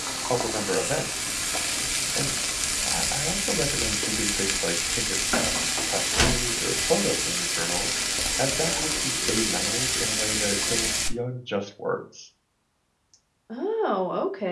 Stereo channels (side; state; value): both; identical; correlation 1.00